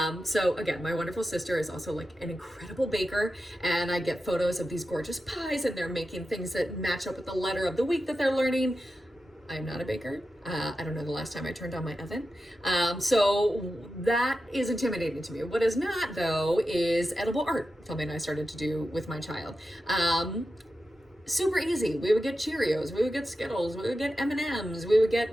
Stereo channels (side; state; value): both; normal; correlation 0.91